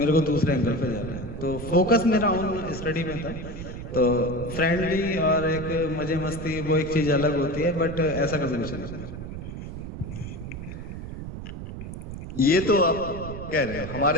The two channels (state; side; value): noise; right; rumble, 8 dB below the sound